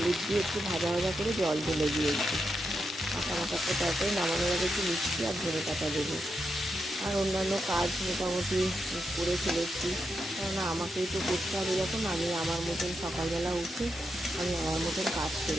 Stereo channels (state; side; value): normal; both; correlation 0.85